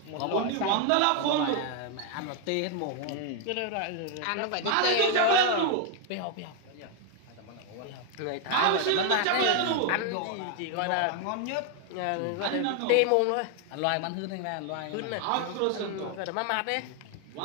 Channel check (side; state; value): both; different; correlation 0.01